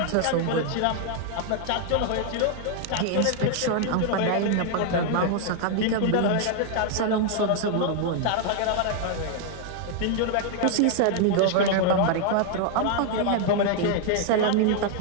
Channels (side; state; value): both; different; correlation 0.00